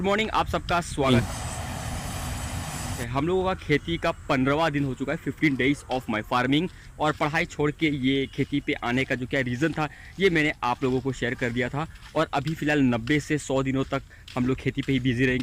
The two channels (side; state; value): both; identical; correlation 1.00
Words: मॉर्निंग, आप सबका स्वागत है। हम लोगों का खेती का 15वां दिन हो चुका है, 15 डेज ऑफ माय फार्मिंग। और पढ़ाई छोड़ के ये खेती पे आने का जो क्या रीज़न था ये मैंने आप लोगों को शेयर कर दिया था। और अभी फ़िलहाल 90 से 100 दिनों तक हम लोग खेती पे ही बिजी